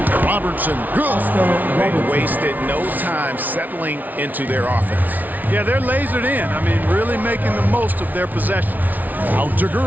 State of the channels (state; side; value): late; left; 0.079 ms